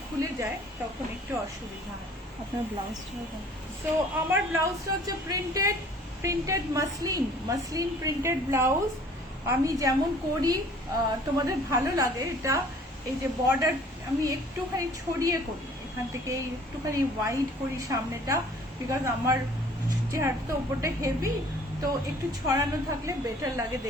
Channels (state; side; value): normal; both; correlation 0.53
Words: খুলে যায়, তখন একটু অসুবিধা হয়। আপনার ব্লাউজটা সো আমার ব্লাউজটা হচ্ছে প্রিন্টেড মাসলিন প্রিন্টেড ব্লাউজ। আমি যেমন করি, তোমাদের ভালো লাগে এটা, এই যে বর্ডার আমি একটুখানি ছড়িয়ে করি, এখান থেকে একটুখানি ওয়াইড করি সামনেটা, বিকজ আমার চেহারাটা ওপরটা হেভি, তো একটু ছড়ানো থাকলে বেটার লাগে